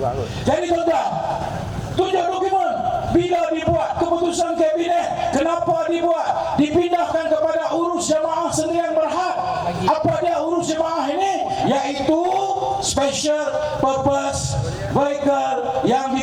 Jadi tuan-tuan, tunjuk dokumen. Bila dibuat keputusan kabinet, kenapa dibuat? Dipindahkan kepada urus jemaah sendirian berhad. Apa dia urus jemaah ini? Iaitu special purpose vehicle yang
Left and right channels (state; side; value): identical; both; correlation 1.00